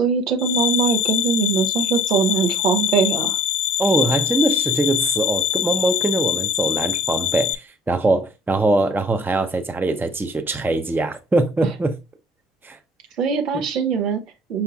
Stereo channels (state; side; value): normal; both; correlation 0.52